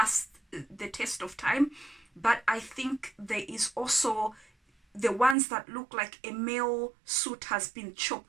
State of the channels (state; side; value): drops out; left; at 5.4 s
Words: the test of time. But I think there is also the ones that look like a male suit has been